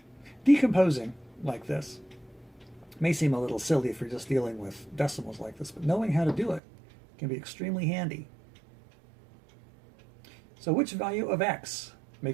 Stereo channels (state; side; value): drops out; left; at 6.6 s